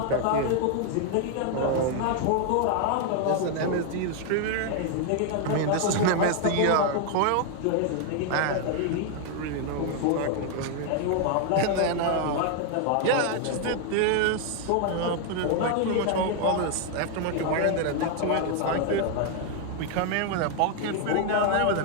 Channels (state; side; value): different; both; correlation 0.00